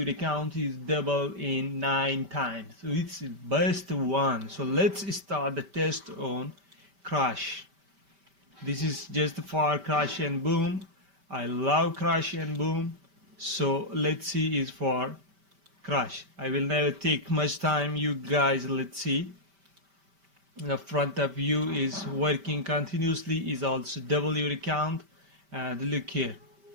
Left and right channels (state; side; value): late; left; 5.1 ms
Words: account is double in 9 times. So it's best one. So let's start the test on crash. This is just for crash and boom. I love crash and boom. So let's see is for crash. I will never take much time, you guys. Let's see. The front of you is working continuously, is also double your account. And look here.